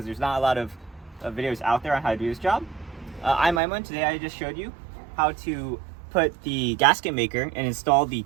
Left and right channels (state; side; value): drops out; left; at 3.6 s